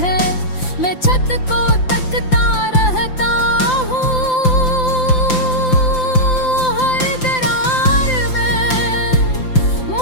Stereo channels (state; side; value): late; right; 5.8 ms